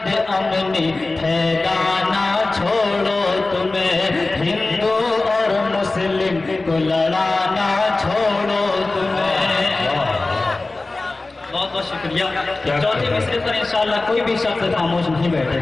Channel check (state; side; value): quieter; right; 3.2 dB